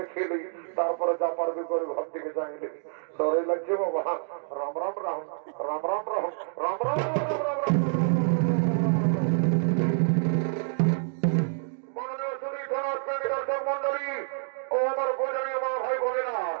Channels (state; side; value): silent; left; digital silence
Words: লি তারপরে যা পারবি করে ঘর থেকে যাইলি ডরে লাগছে বাবা রাম রাম রাম রাম রাম রাম রাম রাম রাম রাম মাননীয় সুধী থানার দর্শক মন্ডলী ও আমার পূজনীয় মা ভাই বোনেরা